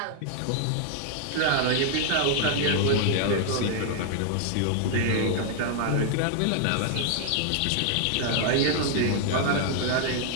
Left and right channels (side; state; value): both; different; correlation 0.00